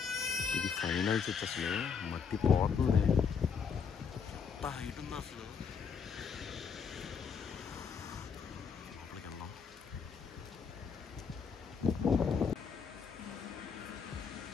ఇది ఫైనల్ చర్చ్. అసలు మట్టి పోతుంది, ఎంత హైట్ ఉందో అసలు. లోపలికి వెళ్దాం.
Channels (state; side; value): quieter; right; 6.2 dB